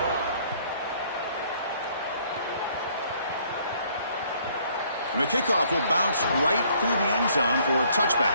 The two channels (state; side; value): inverted; both; correlation -0.62